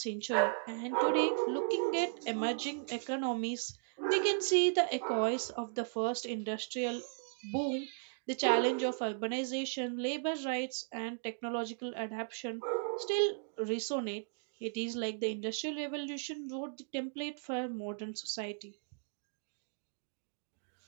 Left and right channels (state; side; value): silent; left; digital silence